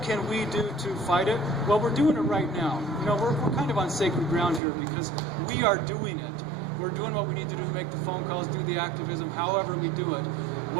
can we do to fight it? Well, we're doing it right now. You know, we're kind of on sacred ground here because we are doing it. We're doing what we need to do to make the phone calls, do the activism, however we do it.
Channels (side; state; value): left; drops out; at 4.6 s